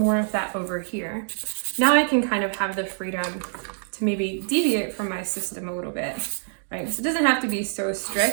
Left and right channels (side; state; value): left; silent; digital silence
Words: of that over here. Now I can kind of have the freedom to maybe deviate from my system a little bit, right? So it doesn't have to be so